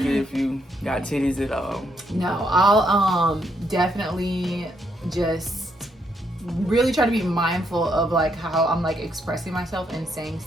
it if you got titties at all. No, I'll definitely just really try to be mindful of like how I'm like expressing myself and saying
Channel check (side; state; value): both; normal; correlation 0.75